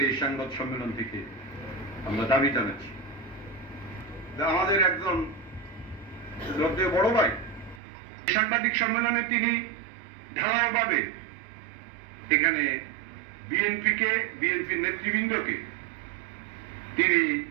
এই সংবাদ সম্মেলন থেকে আমরা দাবি জানাচ্ছি। আমাদের একজন শ্রদ্ধেয় বড় ভাই সাংবাদিক সম্মেলনে তিনি ঢালাওভাবে এখানে বিএনপির নেতৃবৃন্দকে তিনি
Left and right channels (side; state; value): left; drops out; at 7.8 s